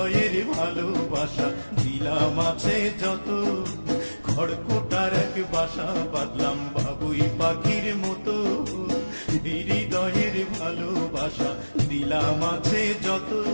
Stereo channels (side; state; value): both; inverted; correlation -1.00